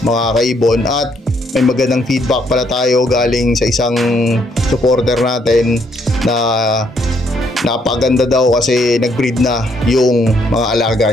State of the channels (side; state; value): both; normal; correlation 0.70